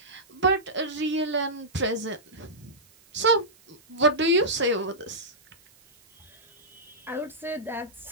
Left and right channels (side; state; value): right; noise; hiss, 28 dB below the sound